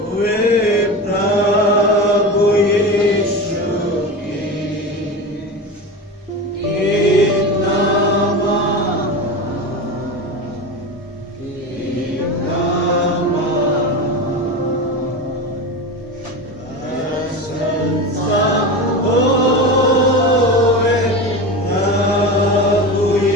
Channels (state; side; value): normal; both; correlation 0.25